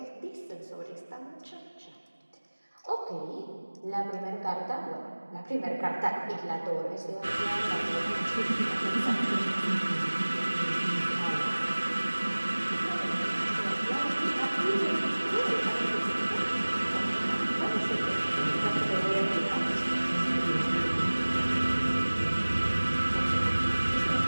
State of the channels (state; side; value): inverted; both; correlation -1.00